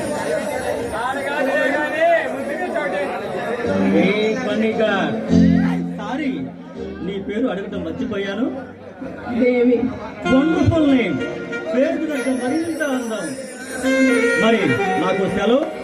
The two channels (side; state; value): both; identical; correlation 1.00